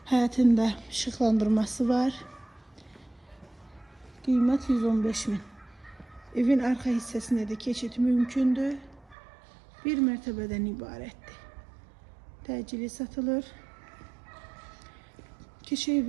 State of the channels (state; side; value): drops out; left; at 9.2 s